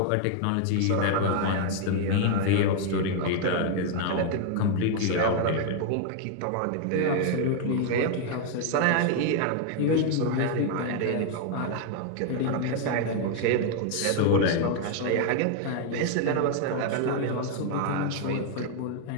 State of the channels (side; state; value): both; different; correlation 0.00